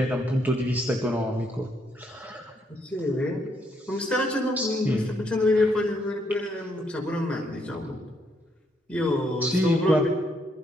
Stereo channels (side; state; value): both; normal; correlation 0.74